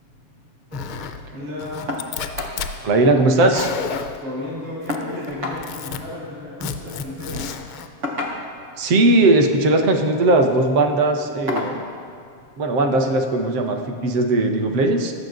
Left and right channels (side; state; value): left; late; 7.1 ms